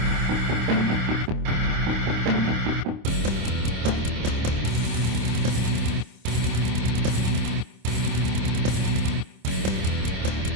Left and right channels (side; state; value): left; late; 26 ms